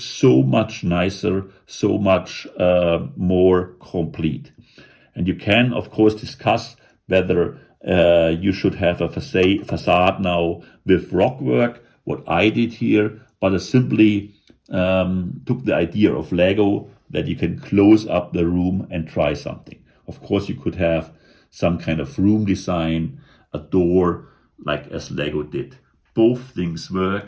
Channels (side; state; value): both; identical; correlation 1.00